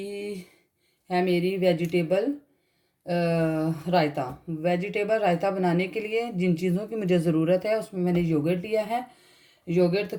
है मेरी वेजिटेबल रायता। वेजिटेबल रायता बनाने के लिए जिन चीज़ों की मुझे ज़रूरत है उसमें मैंने योगर्ट लिया है। योगर्ट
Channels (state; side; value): identical; both; correlation 1.00